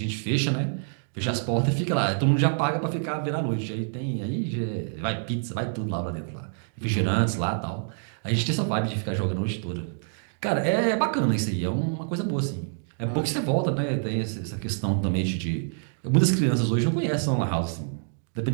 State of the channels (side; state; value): left; silent; 60 dB below the other